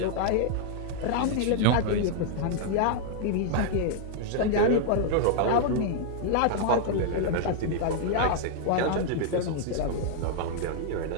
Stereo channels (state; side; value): different; both; correlation -0.01